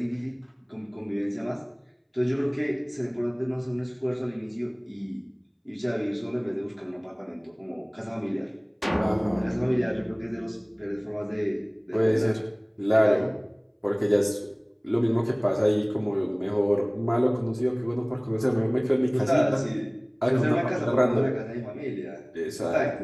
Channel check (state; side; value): identical; both; correlation 1.00